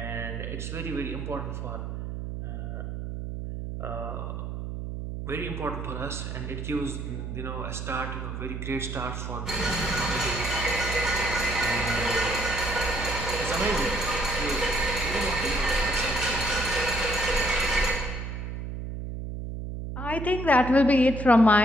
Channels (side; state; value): right; noise; hum, 6 dB below the sound